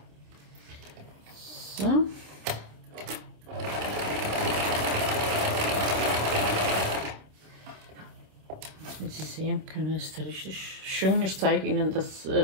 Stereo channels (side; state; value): left; late; 27 ms